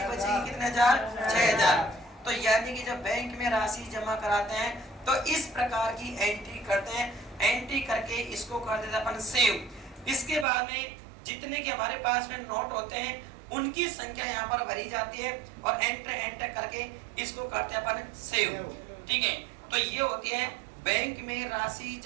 बचेगी कितने हजार? 6,000। तो यानी कि जब बैंक में राशि जमा कराते हैं तो इस प्रकार की एंट्री करते हैं। एंट्री करके इसको कर देते अपन सेव। इसके बाद में जितने के हमारे पास में नोट होते हैं उनकी संख्या यहाँ पर भरी जाती है और एंटर एंटर करके इसको करते हैं अपन सेव, ठीक है। तो ये होती है बैंक में राशि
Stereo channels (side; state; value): left; drops out; at 10.5 s